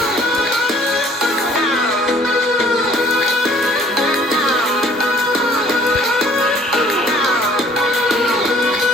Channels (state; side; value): normal; both; correlation 0.55